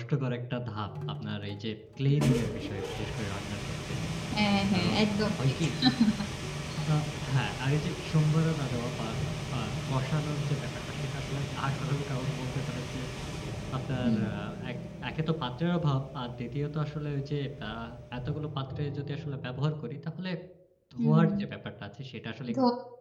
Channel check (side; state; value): both; identical; correlation 1.00